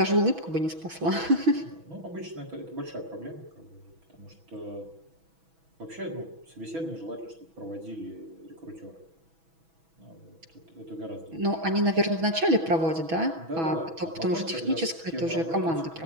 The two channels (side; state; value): left; late; 6.1 ms